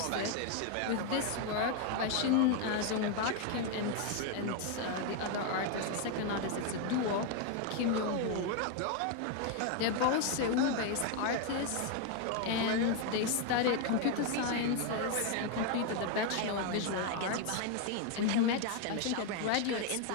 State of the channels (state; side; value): different; both; correlation 0.01